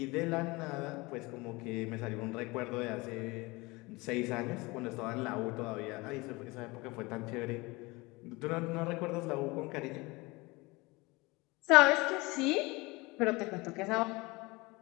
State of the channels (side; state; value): right; quieter; 23.7 dB